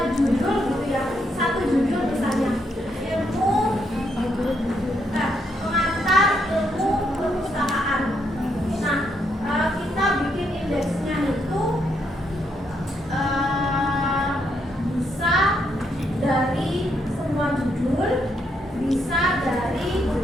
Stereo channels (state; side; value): normal; both; correlation 0.76